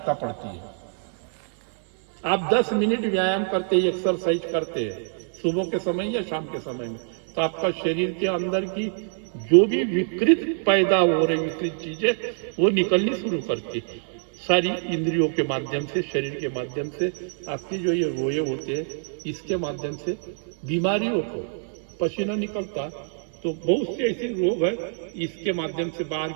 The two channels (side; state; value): left; silent; 62 dB below the other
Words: पड़ती है। आप 10 मिनट व्यायाम करते हैं, एक्सरसाइज करते हैं सुबह के समय या शाम के समय में, तो आपका शरीर के अंदर की जो भी विकृत पैदा हो रही विकृत चीजें वो निकलनी शुरू करती है। सारी इंद्रियों के माध्यम से, शरीर के माध्यम से, आपकी जो ये रोए होते हैं इसके माध्यम से बीमारियों को, पसीना निकलता तो बहुत से ऐसे रोग है इसके माध्यम से बाहर